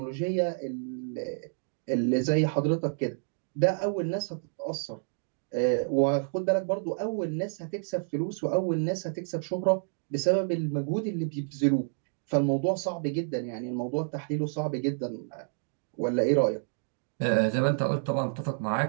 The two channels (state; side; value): silent; left; digital silence